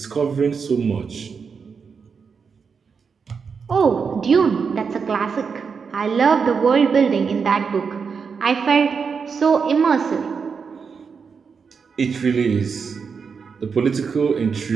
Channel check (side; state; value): left; quieter; 5.8 dB